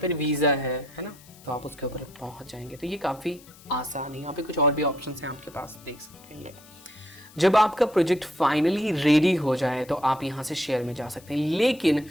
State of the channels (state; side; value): noise; left; hiss, 23 dB below the sound